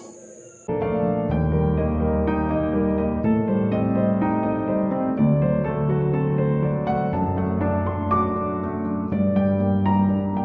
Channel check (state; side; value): identical; both; correlation 1.00